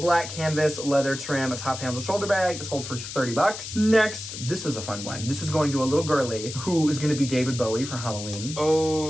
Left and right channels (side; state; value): left; noise; hiss, 9 dB below the sound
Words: canvas leather trim, a top handle shoulder bag, sold for $30. Next, this was a fun one. This is going to a little girly who is going to be David Bowie for Halloween.